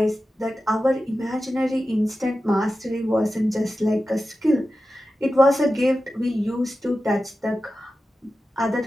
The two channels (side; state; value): both; normal; correlation 0.93